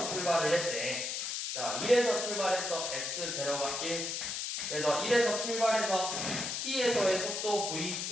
출발을 했대. 자, 1에서 출발해서 x0가 1. 그래서 1에서 출발해서 t에서의 속도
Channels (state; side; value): noise; left; hiss, 3 dB below the sound